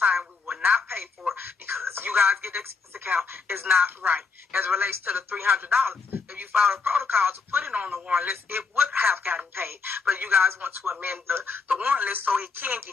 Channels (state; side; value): quieter; right; 4.8 dB